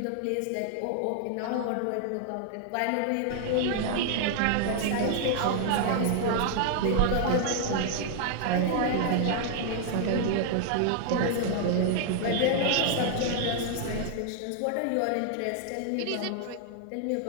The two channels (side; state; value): both; different; correlation 0.00